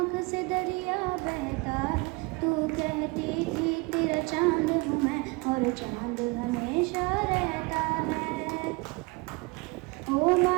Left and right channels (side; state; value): left; quieter; 26.7 dB